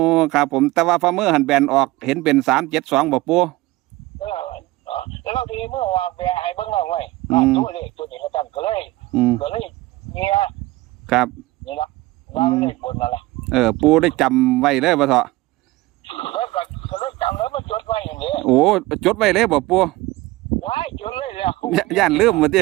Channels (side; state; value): left; quieter; 19.1 dB